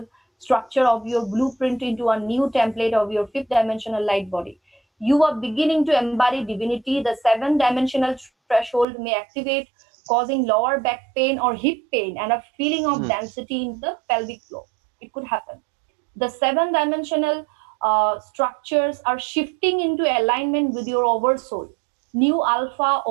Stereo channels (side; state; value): left; drops out; at 8.8 s